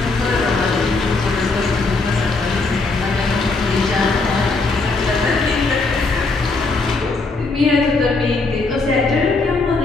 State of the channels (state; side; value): quieter; right; 3.7 dB